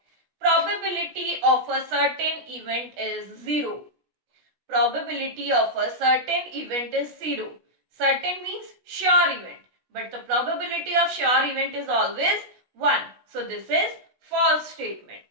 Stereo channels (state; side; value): late; left; 16 ms